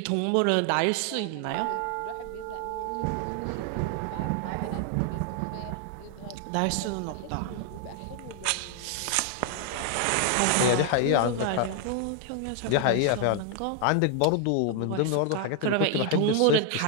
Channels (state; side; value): different; both; correlation 0.00